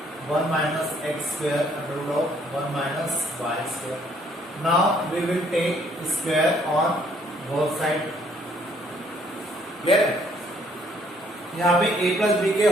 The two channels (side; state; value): both; normal; correlation 0.65